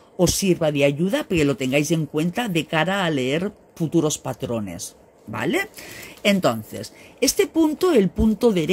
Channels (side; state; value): both; identical; correlation 1.00